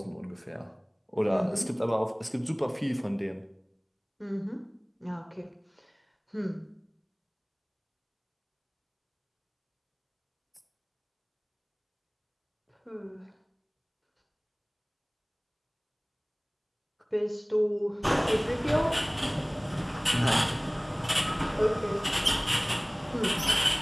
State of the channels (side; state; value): both; identical; correlation 1.00